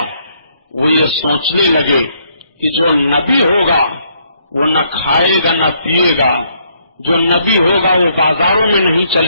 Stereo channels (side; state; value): both; inverted; correlation -0.70